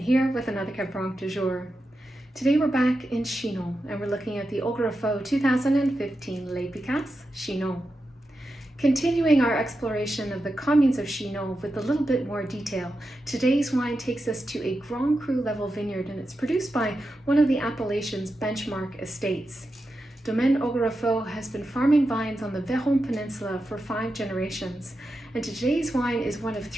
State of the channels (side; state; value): both; normal; correlation 0.89